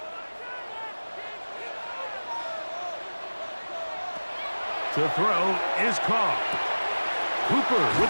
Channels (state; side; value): inverted; both; correlation -1.00